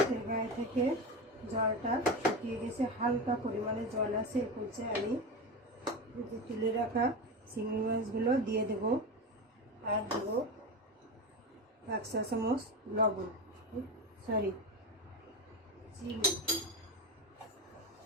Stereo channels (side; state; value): both; normal; correlation 0.21